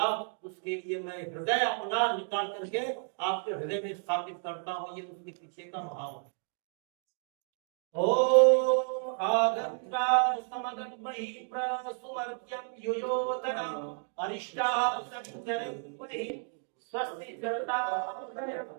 उसके लिए मैं हृदय अपना निकाल करके आपके हृदय में स्थापित करता हूँ। ये उसके पीछे का भाव है। ओम आगंत्रान समगन्महि प्रसुमर्त्यं युयोतरम् अरिष्टाः सञ्चरन्महि स्वस्ति चरतादयम्।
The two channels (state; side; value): silent; left; 56 dB below the other